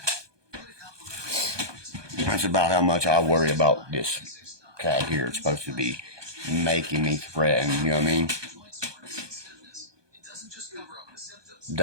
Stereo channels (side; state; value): left; late; 1.2 ms